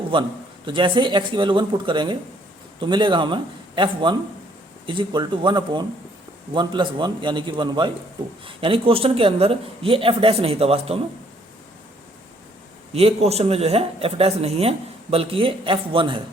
1। तो जैसे ही x की वैल्यू 1 पुट करेंगे तो मिलेगा हमें f1 is equal to 1/1 plus 1 यानी कि 1/2। यानी क्वेश्चन के अंदर ये f डैश नहीं था, वास्तव में ये क्वेश्चन में जो है f डैश नहीं है बल्कि ये f1 है।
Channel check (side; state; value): both; normal; correlation 0.64